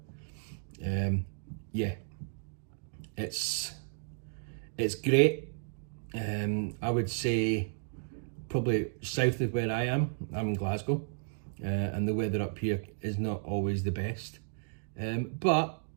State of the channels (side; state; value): left; silent; digital silence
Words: it. Yeah, it's great. I would say probably south of where I am. I'm in Glasgow, and the weather up here is not always the best. But